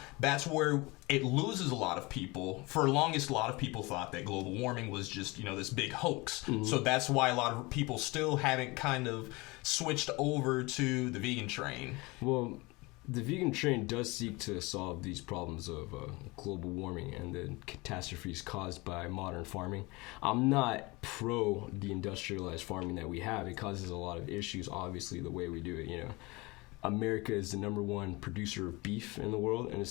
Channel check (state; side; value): quieter; right; 24.2 dB